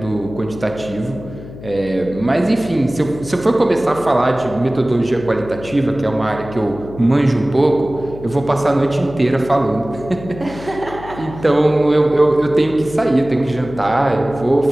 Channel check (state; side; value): noise; left; hum, 14 dB below the sound